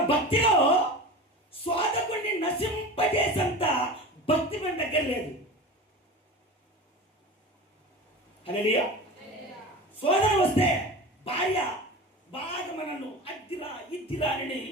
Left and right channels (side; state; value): both; normal; correlation 0.30